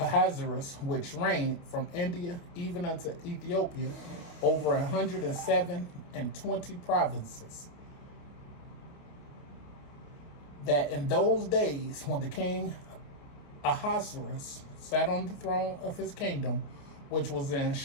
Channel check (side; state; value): right; late; 29 ms